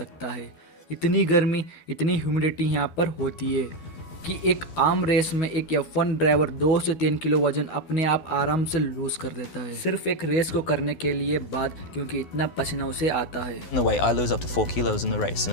है। इतनी गर्मी, इतनी ह्यूमिडिटी यहाँ पर होती है कि एक आम रेस में एक F1 ड्राइवर 2 से 3 किलो वजन अपने आप आराम से लूज कर देता है, सिर्फ एक रेस को करने के लिए बाद, क्योंकि इतना पसीना उसे आता है। In the way, I lose up to 4 kilos in the race in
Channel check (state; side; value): late; right; 12 ms